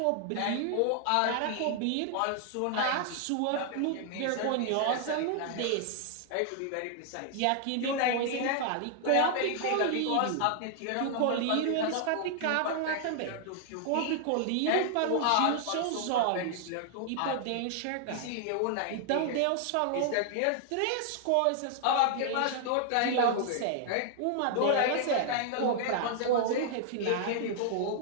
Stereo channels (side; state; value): both; different; correlation 0.00